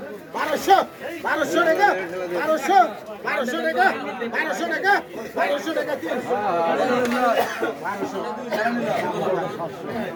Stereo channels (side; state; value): both; identical; correlation 1.00